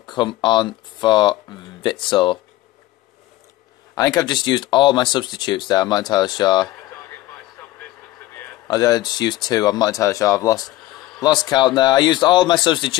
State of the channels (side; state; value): right; quieter; 16.8 dB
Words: on for Witsel. I think I've just used all my substitutes there. I'm not entirely sure. I just used 2. I'm not entirely sure. I've lost count there. I used all my